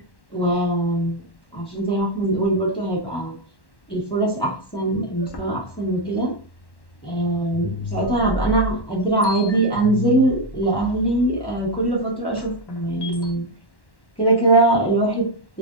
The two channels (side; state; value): right; late; 1.1 ms